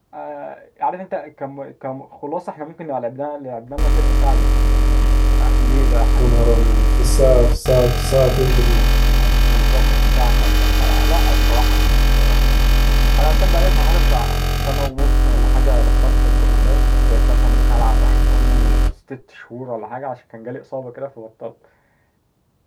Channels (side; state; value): both; identical; correlation 1.00